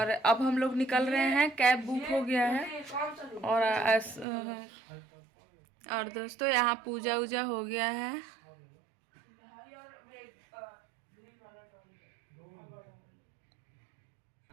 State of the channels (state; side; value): drops out; left; at 4.2 s